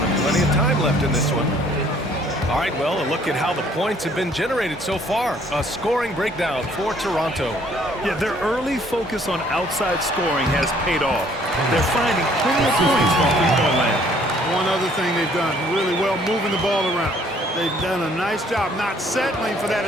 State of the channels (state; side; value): normal; both; correlation 0.61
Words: Plenty of time left in this one. All right, well, a look at how the points have been generated so far. A scoring breakdown for Toronto. Yeah, their early focus on outside scoring has paid off. They're finding plenty of points from three-point land. One other thing they've done really well, moving the ball around. They've done a nice job not settling for that